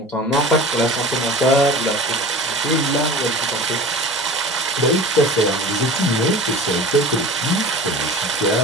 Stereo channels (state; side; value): normal; both; correlation 0.37